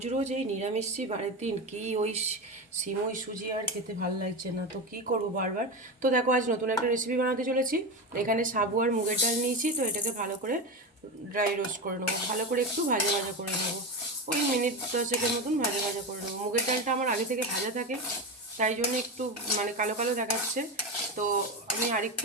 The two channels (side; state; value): both; normal; correlation 0.18